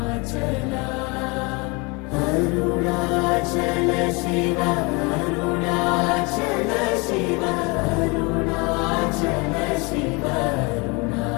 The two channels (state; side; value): quieter; right; 28.5 dB